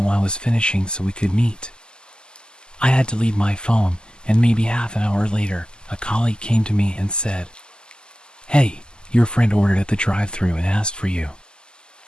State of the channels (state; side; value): late; right; 0.047 ms